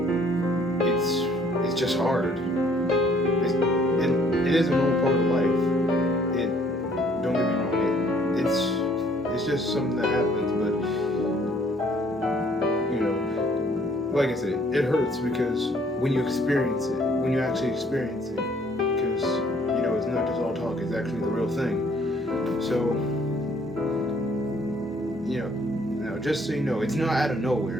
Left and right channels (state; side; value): normal; both; correlation 0.61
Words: it's just hard. It is a normal part of life. Don't get me wrong. It's just something that happens, but like I said, it hurts because when you actually experience it, because it's not just all talk. It's actually the real thing. So now just so you know, it's not out of